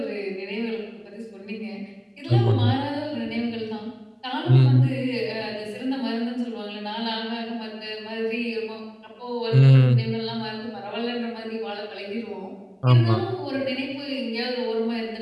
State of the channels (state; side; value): identical; both; correlation 1.00